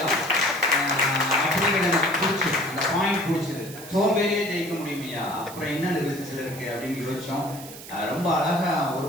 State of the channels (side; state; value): right; noise; hiss, 15 dB below the sound